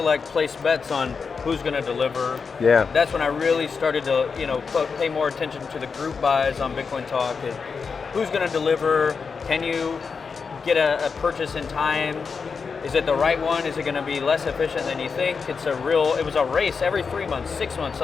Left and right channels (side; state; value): right; quieter; 5.3 dB